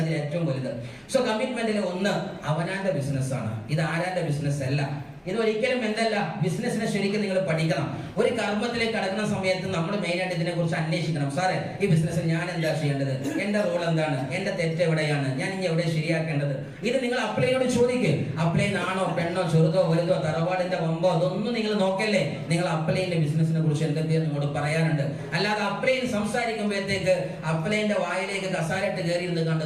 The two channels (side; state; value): both; identical; correlation 1.00